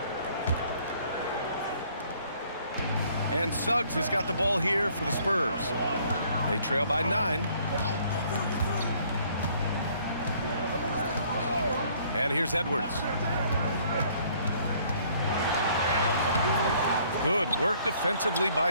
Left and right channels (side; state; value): both; inverted; correlation -0.61